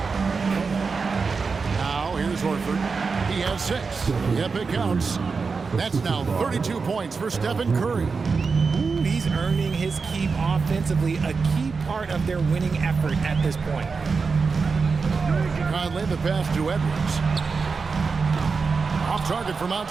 Now here's Horford. He has 6. Yep, it counts. That's now 32 points for Stephen Curry. He's earning his keep offensively, a key part of their winning effort at this point. Conley the pass to Edwards. Off target from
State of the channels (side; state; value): left; quieter; 4.8 dB